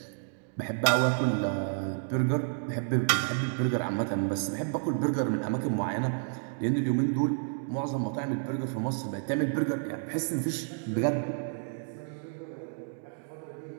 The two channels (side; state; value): left; silent; digital silence